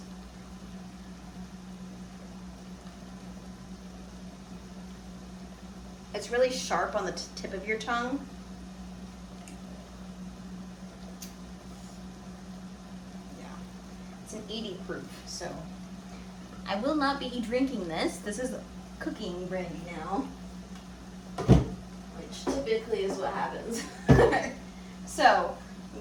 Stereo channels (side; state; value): both; identical; correlation 1.00